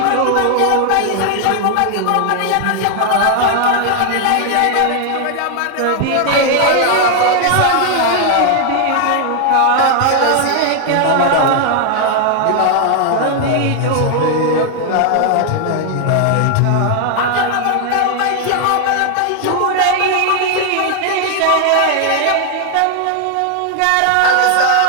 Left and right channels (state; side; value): different; both; correlation 0.00